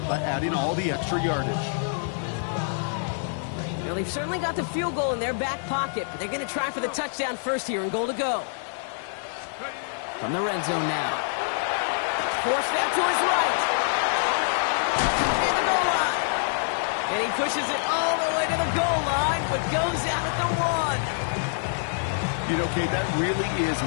by adding all the extra yardage. Well, they've certainly got the field goal in their back pocket, but they're going to try for the touchdown first here and goal to go. From the red zone now. Forced out to his right. In the goal line. And he pushes it all the way to the goal line, but goes out at the 1. You know, Kate, that really is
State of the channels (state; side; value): silent; right; digital silence